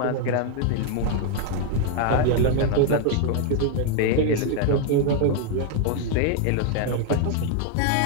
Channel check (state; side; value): different; both; correlation 0.01